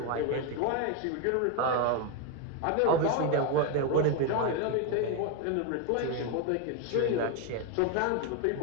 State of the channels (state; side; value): different; both; correlation 0.02